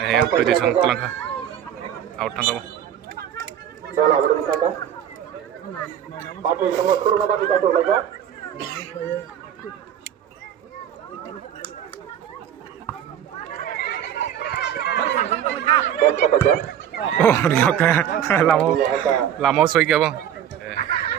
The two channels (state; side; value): quieter; left; 9.9 dB